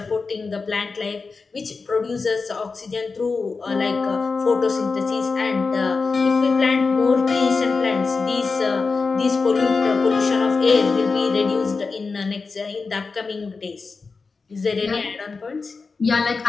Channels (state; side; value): quieter; right; 4.4 dB